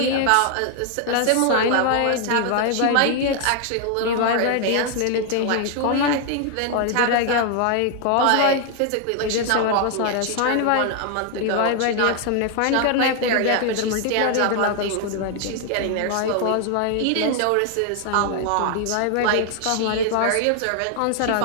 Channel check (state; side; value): different; both; correlation 0.00